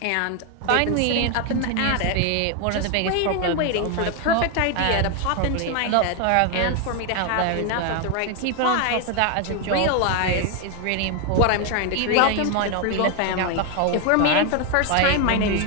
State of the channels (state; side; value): different; both; correlation 0.01